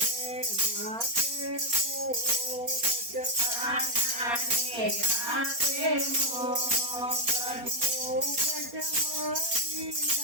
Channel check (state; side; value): late; left; 4.3 ms